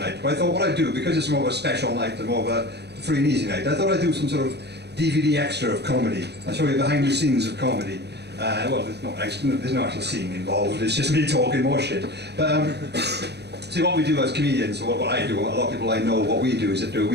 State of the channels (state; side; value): late; left; 0.49 ms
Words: But I thought what I'd do, because it's more of a special night and more of a free and easy night, I thought I'd do some sort of DVD extra of comedy. I'll show you behind the scenes of comedy. Well, there's no actual scene involved, it's just me talking more shit. But see, what we do as comedians, or what I do, a lot of people I know, what we do is that